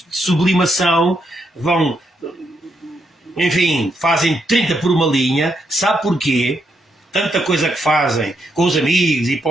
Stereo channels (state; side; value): normal; both; correlation 0.79